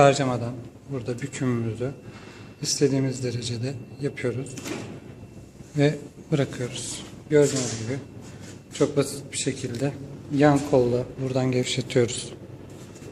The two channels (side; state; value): both; identical; correlation 1.00